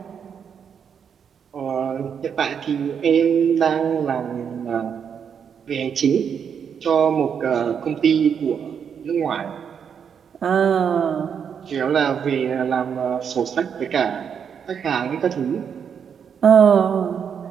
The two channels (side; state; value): left; quieter; 7.4 dB